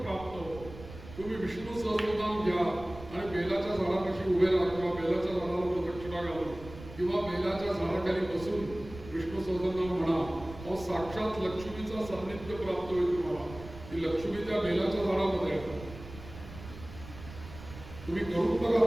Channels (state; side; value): noise; right; rumble, 15 dB below the sound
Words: प्राप्त होतं. तुम्ही विष्णू सहस्रनाम घ्या आणि बेलाच्या झाडापाशी उभे राहा किंवा बेलाच्या झाडाला प्रदक्षिणा घालून किंवा बेलाच्या झाडाखाली बसून विष्णू सहस्रनाम म्हणा. अहो साक्षात लक्ष्मीचा सान्निध्य प्राप्त होईल तुम्हाला. ती लक्ष्मी त्या बेलाच्या झाडामध्ये आहे. तुम्ही करून बघा